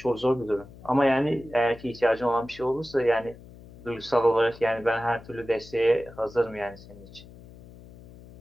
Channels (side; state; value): left; noise; hum, 20 dB below the sound